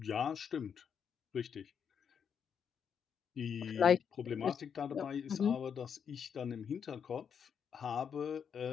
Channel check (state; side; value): quieter; right; 7.3 dB